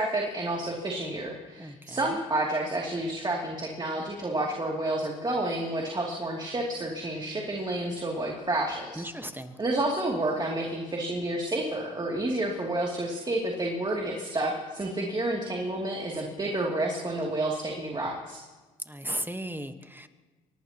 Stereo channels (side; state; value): both; normal; correlation 0.53